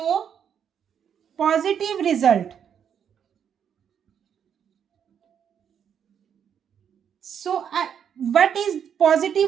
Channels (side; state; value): left; quieter; 8.3 dB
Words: positive result. So, what is